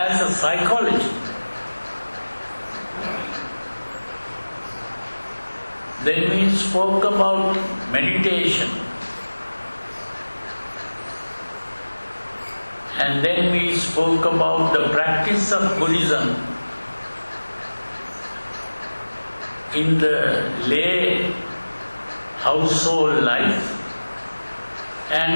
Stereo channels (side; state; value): both; inverted; correlation -1.00